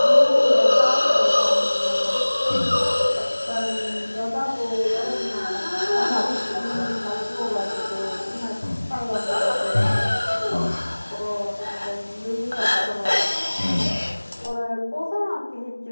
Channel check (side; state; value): both; inverted; correlation -1.00